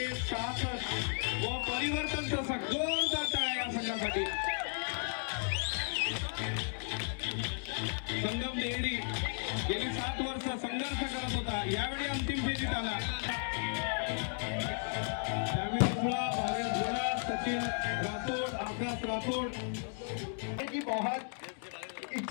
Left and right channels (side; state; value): right; silent; 55 dB below the other